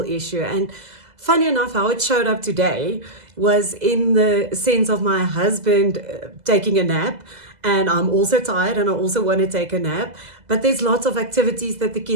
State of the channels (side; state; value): left; late; 2.0 ms